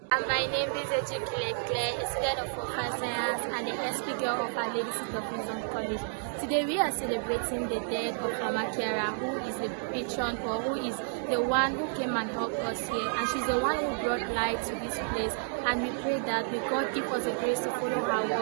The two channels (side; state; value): left; silent; digital silence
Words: My name is Chiara Lubich, a student of Focolare Science and the speaker of our Ladies of Wisdom College. Today we are celebrating the death of Mama Chiara, who is the patron or who is the one who came and helped us here, and she's the one who brought light to this place. And we pray that may God give us the grace to follow her